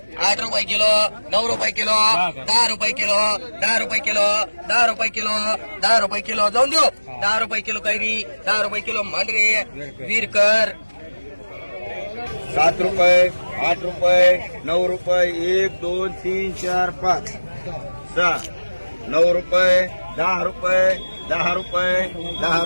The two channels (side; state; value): both; inverted; correlation -1.00